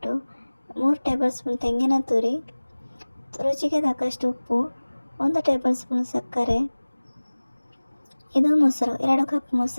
3 ಟೇಬಲ್ ಸ್ಪೂನ್ ತೆಂಗಿನ ತುರಿ, ರುಚಿಗೆ ತಕ್ಕಷ್ಟು ಉಪ್ಪು, 1 ಟೇಬಲ್ ಸ್ಪೂನ್ ಸಕ್ಕರೆ. ಇದು ಮೊಸರು, 2 ಕಪ್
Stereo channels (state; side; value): inverted; both; correlation -1.00